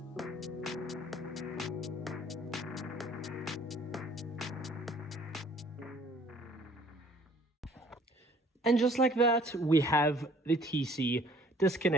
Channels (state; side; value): normal; both; correlation 0.56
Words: And just like that, we have the TC